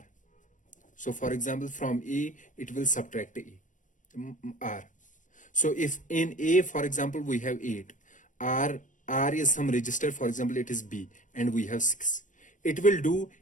So for example, from A, it will subtract R. So if in A, for example, we have 8, R is some register, for example, it is B, and we have 6. It will do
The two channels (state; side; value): late; right; 0.37 ms